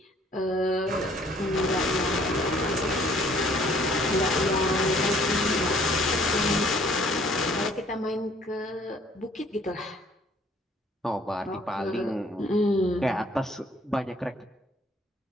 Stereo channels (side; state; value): both; normal; correlation 0.59